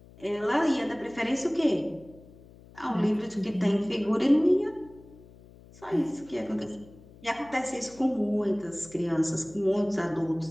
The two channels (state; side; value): noise; left; hum, 22 dB below the sound